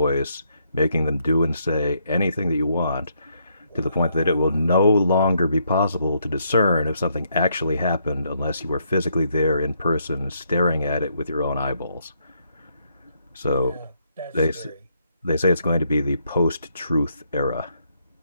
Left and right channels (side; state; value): both; inverted; correlation -0.74